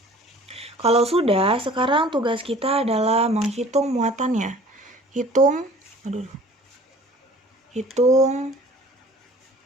Kalau sudah, sekarang tugas kita adalah menghitung muatannya. Hitung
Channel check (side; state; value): both; normal; correlation 0.49